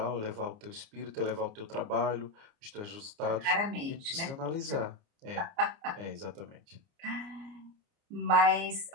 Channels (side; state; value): left; late; 29 ms